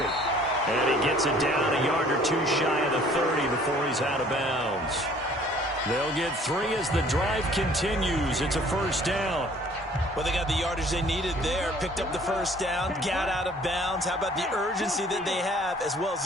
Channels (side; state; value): both; normal; correlation 0.55